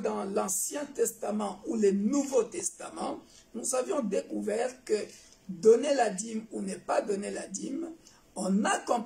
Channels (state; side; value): identical; both; correlation 1.00